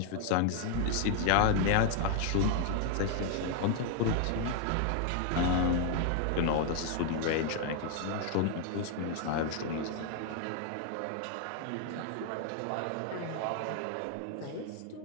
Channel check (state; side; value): different; both; correlation 0.00